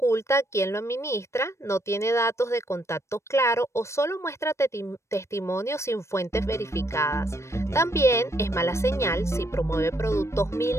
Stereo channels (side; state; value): right; late; 0.13 ms